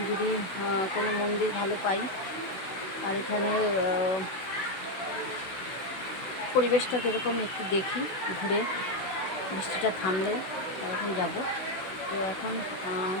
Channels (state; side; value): late; right; 16 ms